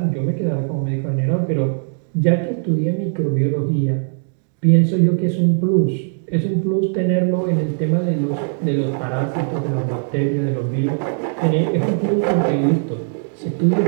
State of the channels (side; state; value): left; silent; digital silence